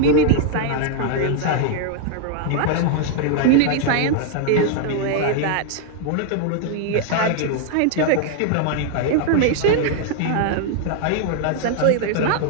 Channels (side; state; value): both; different; correlation 0.00